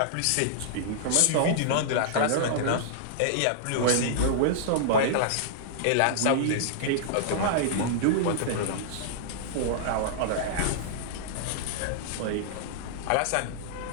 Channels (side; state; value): both; different; correlation -0.02